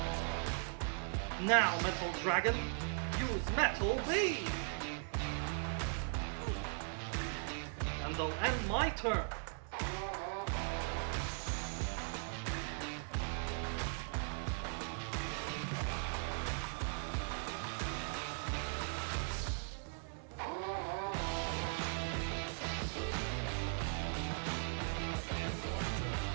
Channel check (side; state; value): left; silent; 52 dB below the other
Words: Now Metal Dragon, use Metal Beam. And I'll end my turn.